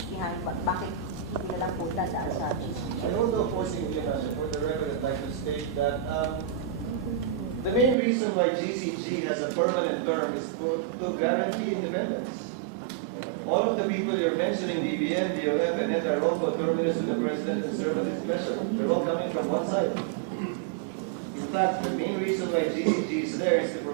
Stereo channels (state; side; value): drops out; left; at 8.0 s